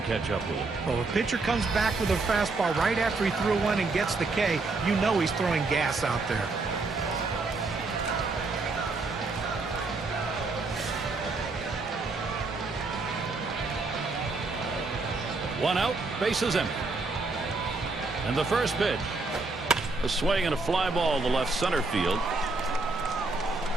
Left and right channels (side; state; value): left; quieter; 3.7 dB